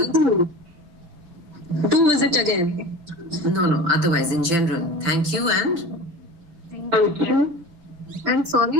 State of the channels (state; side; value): late; left; 5.9 ms